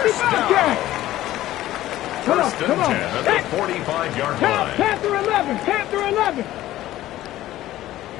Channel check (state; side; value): quieter; right; 14.8 dB